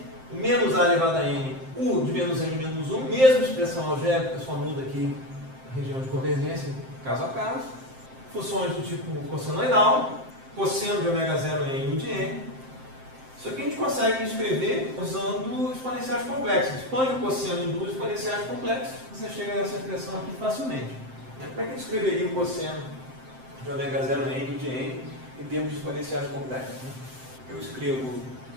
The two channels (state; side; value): late; left; 7.7 ms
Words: menos a elevado a n, u de menos n menos 1, mesma expressão algébrica, só muda aqui a região de convergência, caso a caso. Funções do tipo cossenoidal, cosseno de ômega 0 n e u de n. Isso aqui a gente consegue escrever usando exponenciais complexos. Expande o cosseno em duas exponenciais complexas, você chega a essa expressão aqui facilmente. Como é que a gente escreveria o cosseno de ômega 0 n e u de n em termos de exponenciais complexos? Eu escrevo